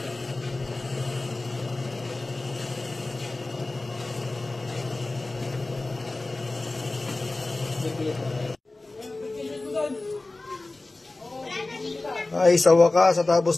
Ay, sa wakas, sa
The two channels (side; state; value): right; quieter; 3.1 dB